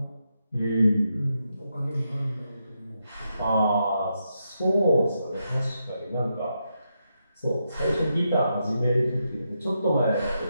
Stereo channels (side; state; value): both; inverted; correlation -0.84